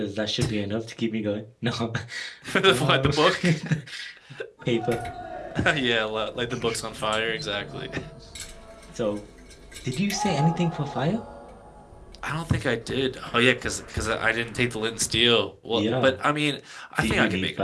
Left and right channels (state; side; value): identical; both; correlation 1.00